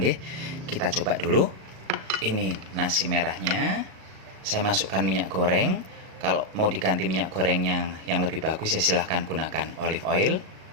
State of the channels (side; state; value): left; late; 37 ms